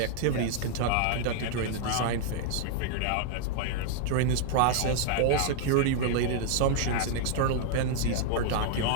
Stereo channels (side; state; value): both; different; correlation -0.01